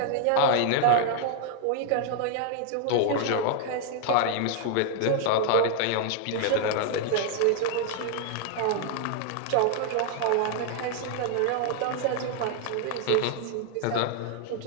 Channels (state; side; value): different; both; correlation 0.00